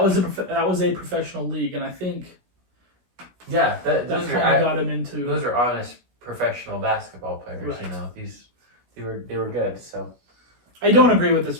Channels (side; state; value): left; late; 16 ms